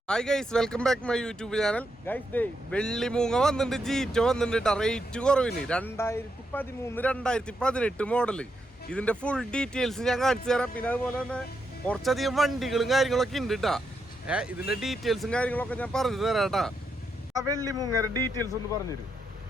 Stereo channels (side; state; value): both; normal; correlation 0.82